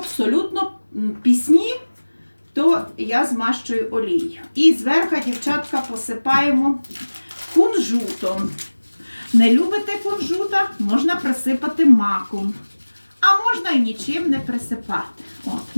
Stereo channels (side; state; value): both; inverted; correlation -1.00